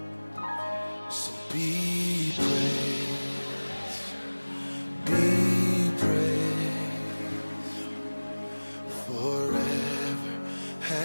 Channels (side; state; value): both; inverted; correlation -1.00